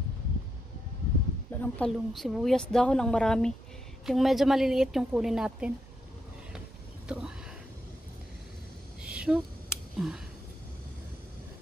Wala ng talong. Sibuyas dahon ang marami. Yung medyo maliliit yung kunin natin. Ito. Shoot.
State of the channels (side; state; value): both; normal; correlation 0.82